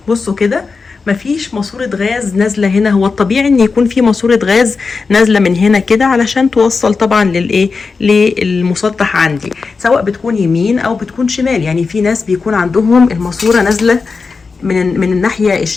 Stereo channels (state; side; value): quieter; right; 4.6 dB